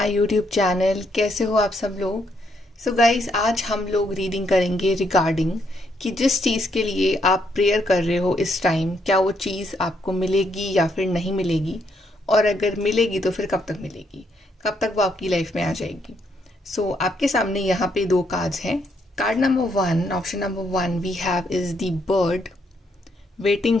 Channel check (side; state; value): both; normal; correlation 0.74